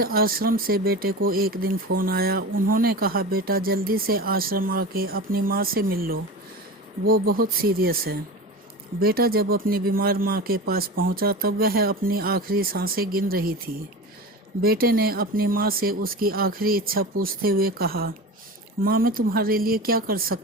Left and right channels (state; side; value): normal; both; correlation 0.29